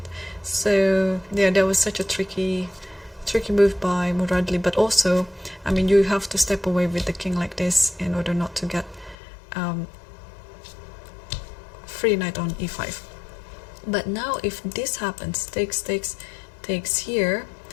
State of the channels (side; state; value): right; drops out; at 9.2 s